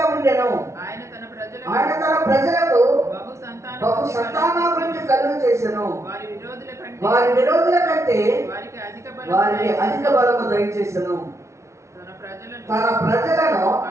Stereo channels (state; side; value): late; left; 0.14 ms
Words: ఉండెను. ఆయన తన ప్రజలకు బహు సంతానాభివృద్ధి కలుగు చేసెను. వారి విరోధుల కంటే వారికి అధిక బలము దయచేసెను. తన ప్రజలను